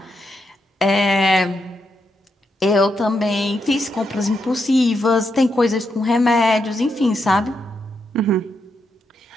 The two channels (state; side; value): normal; both; correlation 0.82